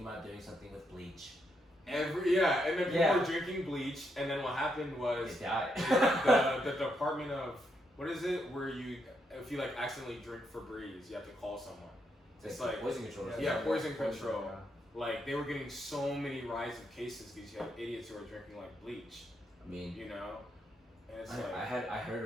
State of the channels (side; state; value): both; normal; correlation 0.79